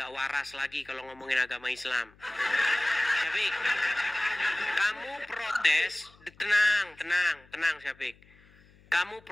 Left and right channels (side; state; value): left; noise; hum, 28 dB below the sound